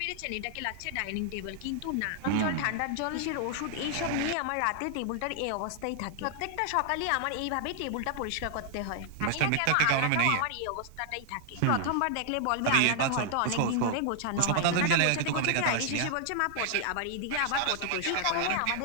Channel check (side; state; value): both; different; correlation 0.00